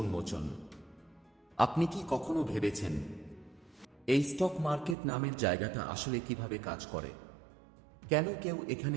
আপনি কি কখনো ভেবেছেন এই স্টক মার্কেট নামের জায়গাটা আসলে কিভাবে কাজ করে? কেন কেউ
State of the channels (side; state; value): left; drops out; at 5.0 s